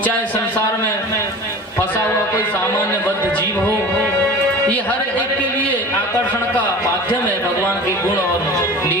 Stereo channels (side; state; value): both; normal; correlation 0.38